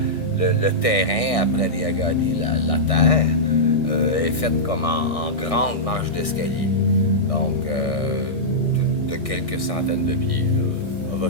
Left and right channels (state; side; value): late; right; 1.6 ms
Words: le terrain à Pradiagadi, la terre, est faite comme en grande marche d'escalier, donc de quelques centaines de pieds, là, of a